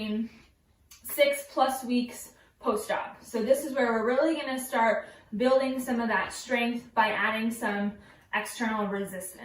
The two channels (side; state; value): both; identical; correlation 1.00